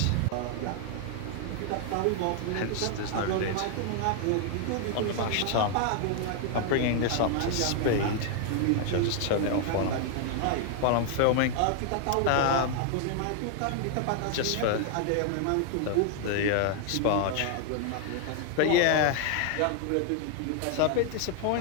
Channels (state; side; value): different; both; correlation 0.00